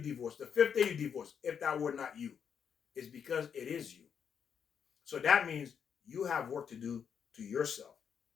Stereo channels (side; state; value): right; quieter; 7.4 dB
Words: The fifth day you divorce. If that were not you, it's because it is you. So that means you have work to do to yourself.